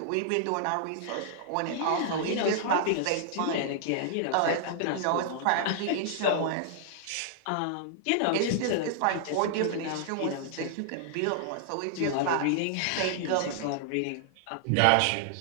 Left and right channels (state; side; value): different; both; correlation -0.01